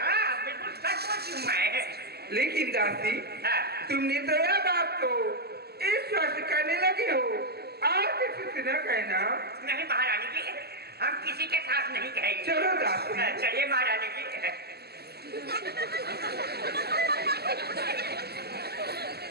बिल्कुल सच बोलती हूँ मैं। लेकिन दासी, हाँ, तुमने तो यह बात को इस वक्त करने लगे हो और किसी से न कहना। नहीं महारानी जी, हम किसी के साथ नहीं कहेंगे। चलो दासी। चलिए महारानी जी।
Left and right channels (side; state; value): left; late; 0.46 ms